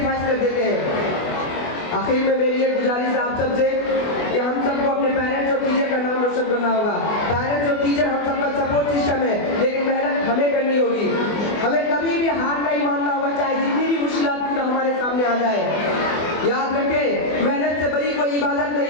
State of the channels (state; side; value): late; right; 24 ms